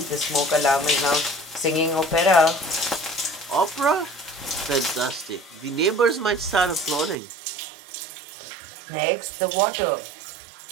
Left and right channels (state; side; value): drops out; left; at 7.2 s